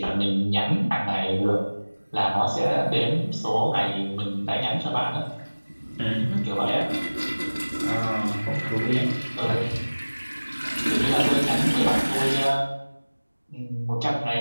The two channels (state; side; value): inverted; both; correlation -1.00